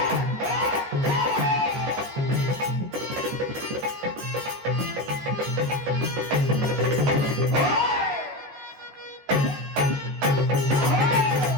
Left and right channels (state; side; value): late; left; 14 ms